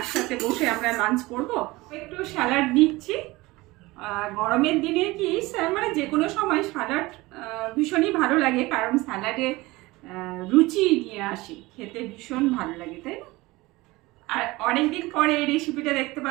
বসে আমরা লাঞ্চ করব। একটু স্যালাড দিচ্ছি। গরমের দিনে কি মানে যে কোনো সময় স্যালাড ভীষণই ভালো লাগে, কারণ স্যালাডে রুচি নিয়ে আসে, খেতে ভীষণ ভালো লাগে, তাই না? আর অনেকদিন পরে এই রেসিপিটা দেখতে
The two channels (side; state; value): left; quieter; 20.9 dB